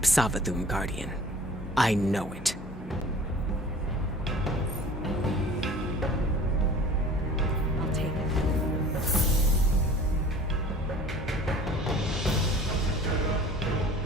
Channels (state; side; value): normal; both; correlation 0.45